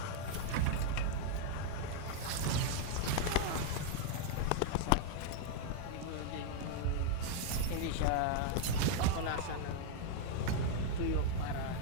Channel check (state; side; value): different; both; correlation -0.01